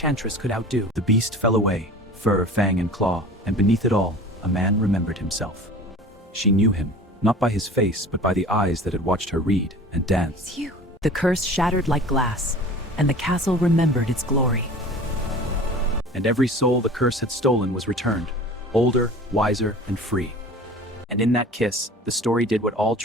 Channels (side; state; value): both; normal; correlation 0.41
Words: could outdo. The beast fell away, fur, fang, and claw, and beneath it all, a man remembered himself. She knew him, not by his face, but by the eyes that had watched her read and dance. It's you. The curse shattered like glass, and the castle remembered its glory. And every soul the curse had stolen was returned, older, wiser, and free. And in that kiss, the story did what all